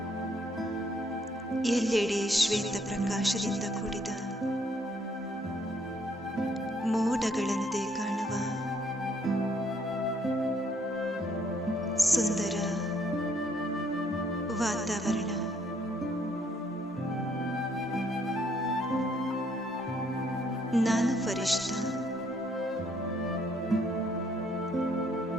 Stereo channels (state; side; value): normal; both; correlation 0.67